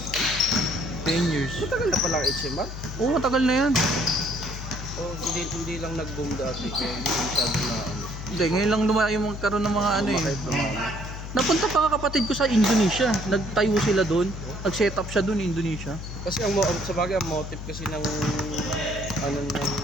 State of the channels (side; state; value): left; noise; hum, 9 dB below the sound